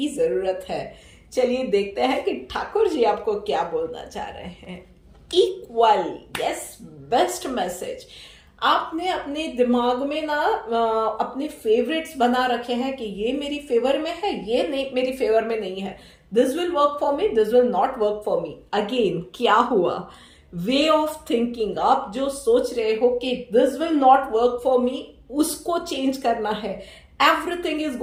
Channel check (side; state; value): both; identical; correlation 1.00